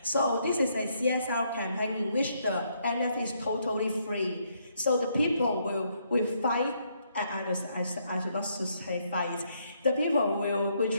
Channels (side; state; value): both; inverted; correlation -0.73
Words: So this is a CSR campaign in which the NFT is totally free. So the people will fight. I should not say fight. The people will